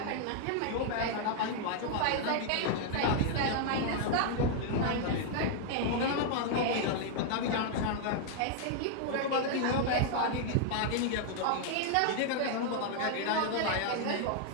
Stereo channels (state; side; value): different; both; correlation 0.00